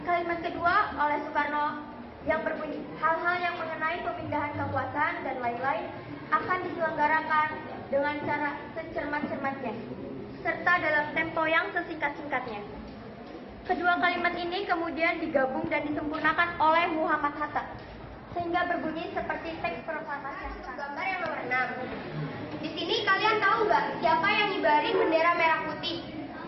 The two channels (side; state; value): both; identical; correlation 1.00